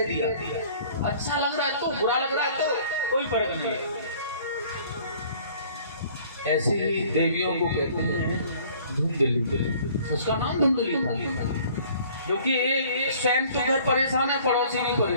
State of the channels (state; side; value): inverted; both; correlation -0.53